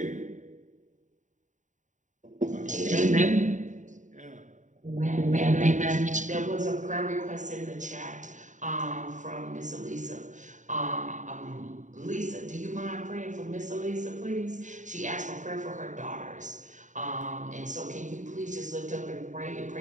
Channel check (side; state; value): left; late; 0.36 ms